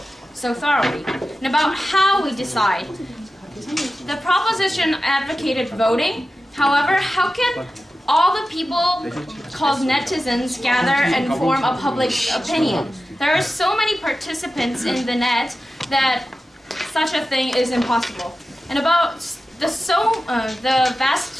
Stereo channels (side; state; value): both; normal; correlation 0.93